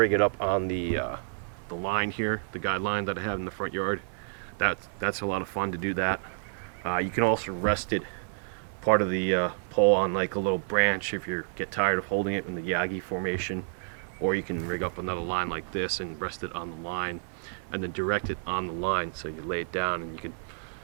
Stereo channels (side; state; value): left; silent; digital silence